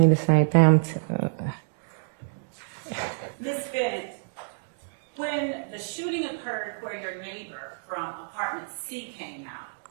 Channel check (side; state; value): left; silent; digital silence